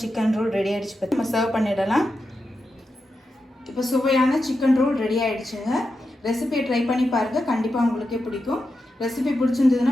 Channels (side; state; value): both; normal; correlation 0.89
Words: சிக்கன் ரோல் ரெடி ஆகிடுச்சு. பற்றி நம்ம சர்வ் பண்ணிடலாம். இப்போ சுவையான சிக்கன் ரோல் ரெடி ஆகிடுச்சுங்க. ரெசிபியை ட்ரை பண்ணி பாருங்கள். கண்டிப்பாக உங்களுக்கே பிடிக்கும். ரெசிபி